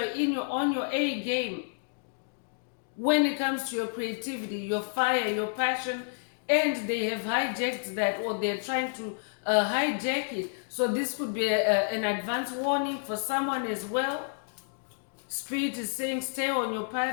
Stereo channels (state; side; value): silent; right; digital silence